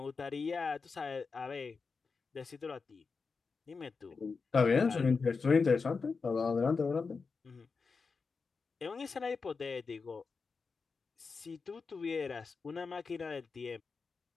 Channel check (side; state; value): right; quieter; 4.8 dB